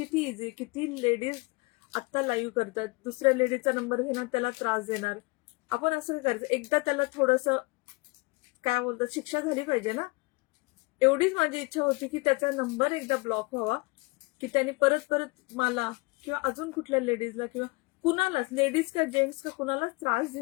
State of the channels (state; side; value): quieter; right; 26.9 dB